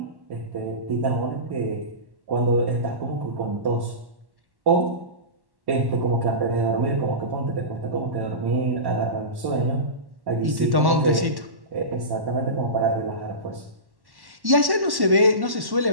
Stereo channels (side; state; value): left; late; 1.1 ms